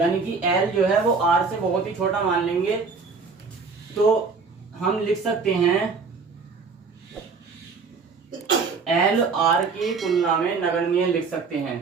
कि l जो है वो r से बहुत ही छोटा मान लेंगे। तो हम लिख सकते हैं l r की तुलना में नगण्य लिख सकते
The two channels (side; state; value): left; quieter; 4.8 dB